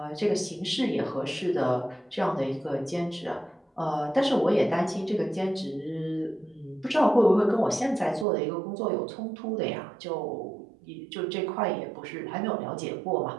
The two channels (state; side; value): drops out; left; at 8.2 s